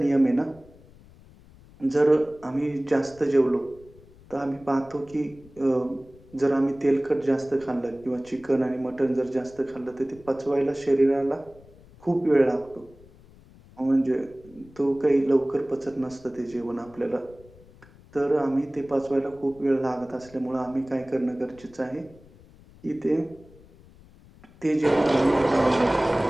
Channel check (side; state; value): left; noise; rumble, 24 dB below the sound